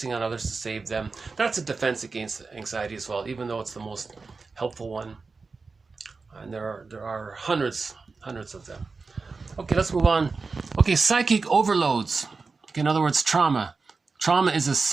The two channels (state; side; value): quieter; left; 4.3 dB